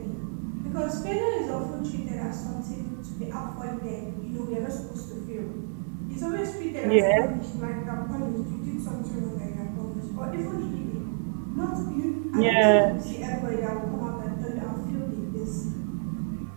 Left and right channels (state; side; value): silent; left; 58 dB below the other